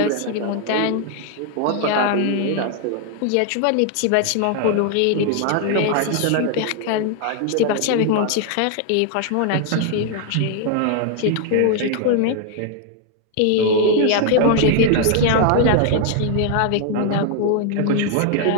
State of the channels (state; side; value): different; both; correlation 0.00